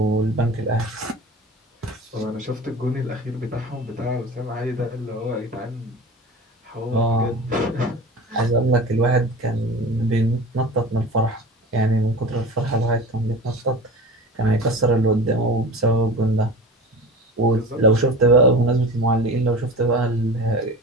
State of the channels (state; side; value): normal; both; correlation 0.34